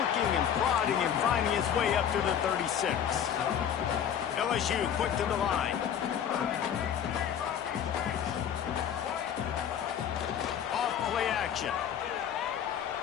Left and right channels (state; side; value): quieter; right; 8.9 dB